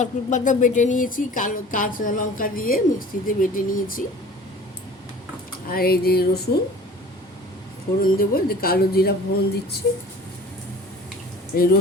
পাতা বেটে নিয়েছি, কালো কাঁচা লঙ্কা দিয়ে মিক্সিতে বেটে নিয়েছি। আর এই যে রসুন ফোড়ন দেবো, যে কালো জিরা ফোড়ন দিচ্ছি, এই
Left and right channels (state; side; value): normal; both; correlation 0.44